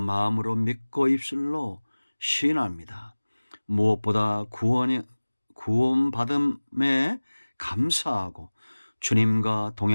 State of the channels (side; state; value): both; inverted; correlation -1.00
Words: 믿고 입술로 시인합니다. 무엇보다 구원받음에 감사하고 주님과